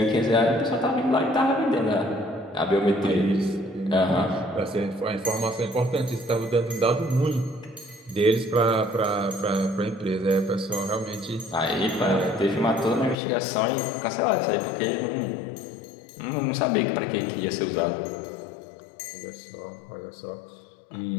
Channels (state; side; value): drops out; right; at 13.2 s